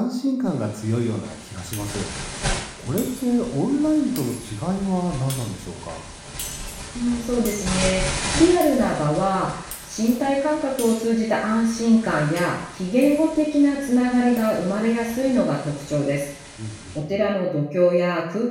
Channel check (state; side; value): identical; both; correlation 1.00